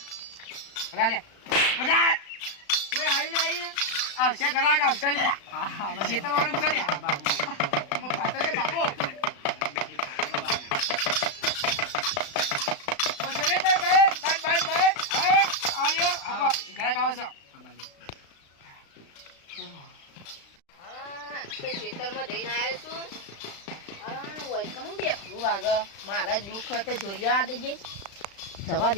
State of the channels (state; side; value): late; right; 36 ms